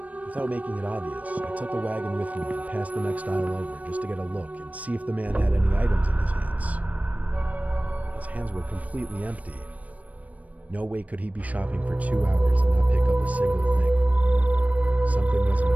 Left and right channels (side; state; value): left; late; 0.069 ms